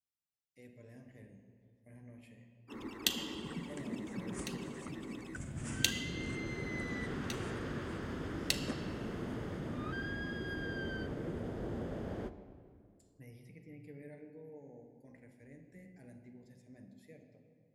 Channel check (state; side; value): identical; both; correlation 1.00